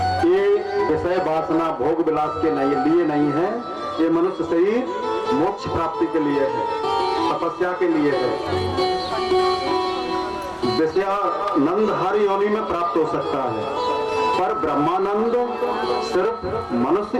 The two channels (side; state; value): both; identical; correlation 1.00